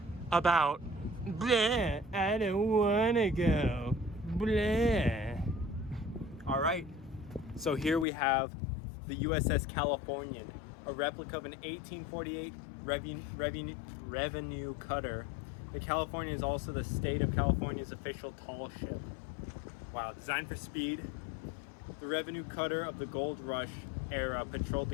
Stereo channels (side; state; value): right; drops out; at 8.1 s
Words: about, bleh, I don't wanna go, bleh. All right, so here we have the USS Californian, a replica of an 1848 revenue cutter. The Californian is also the state of California's official tall ship. Wow, designed for speed, the revenue cutter of the gold rush era patrolled the